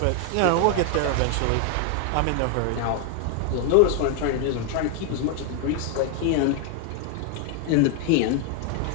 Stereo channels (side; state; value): both; different; correlation 0.01